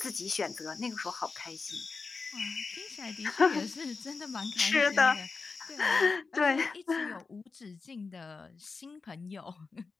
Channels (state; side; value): quieter; right; 4.4 dB